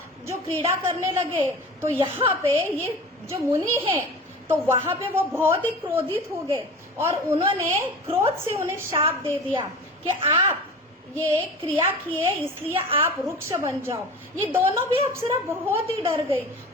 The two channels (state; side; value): normal; both; correlation 0.36